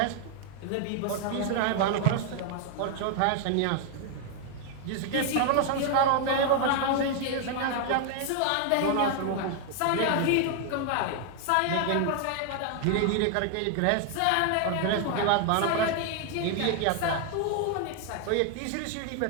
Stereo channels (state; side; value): different; both; correlation 0.00